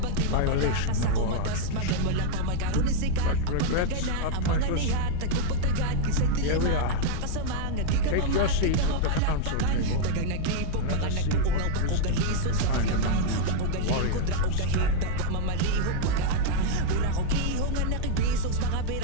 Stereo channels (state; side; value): different; both; correlation -0.01